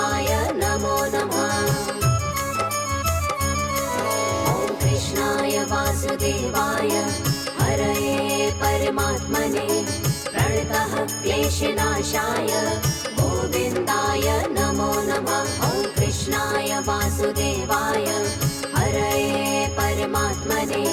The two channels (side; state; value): both; identical; correlation 1.00